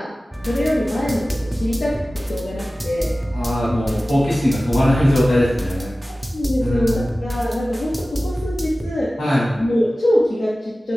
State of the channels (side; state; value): both; normal; correlation 0.96